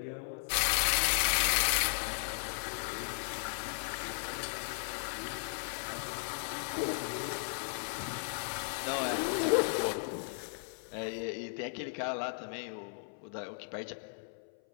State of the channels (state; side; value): silent; right; 54 dB below the other